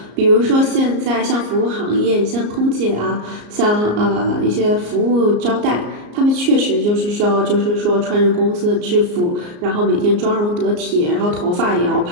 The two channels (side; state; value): left; late; 34 ms